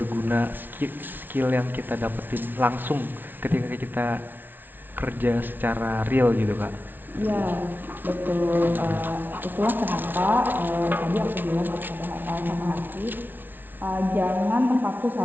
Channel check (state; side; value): late; left; 0.092 ms